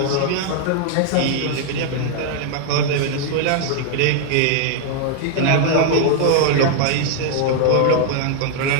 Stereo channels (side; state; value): both; different; correlation 0.00